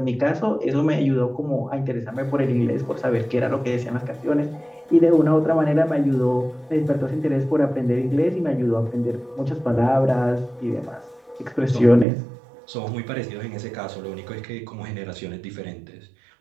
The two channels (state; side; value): drops out; left; at 12.1 s